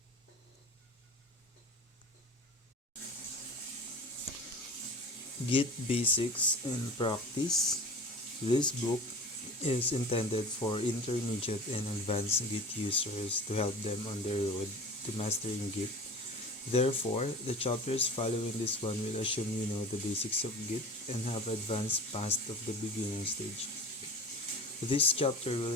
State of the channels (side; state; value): both; normal; correlation 0.36